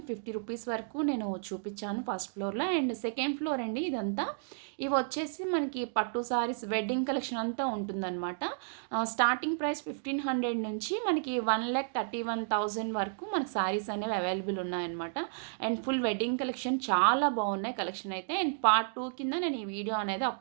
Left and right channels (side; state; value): left; silent; digital silence